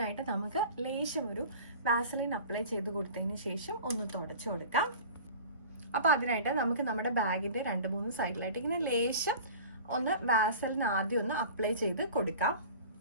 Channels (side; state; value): both; inverted; correlation -0.39